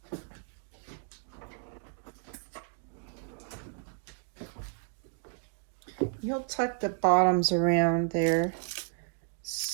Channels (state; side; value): silent; left; 56 dB below the other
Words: You'll tuck the bottoms around there.